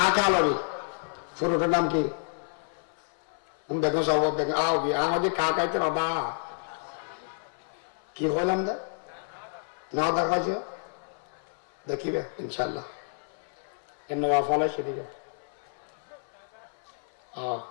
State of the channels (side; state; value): right; silent; 58 dB below the other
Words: লবি ফুরুটের নাম কি দেখো সব দেখো আবি আমাদের কাকাইতে বাবা কি হলাম দা না দেখাছ দেখিবে ইনশাল্লাহ এর ফলে সেদিকে